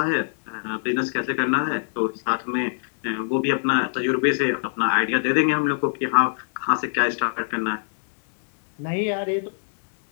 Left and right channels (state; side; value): silent; right; digital silence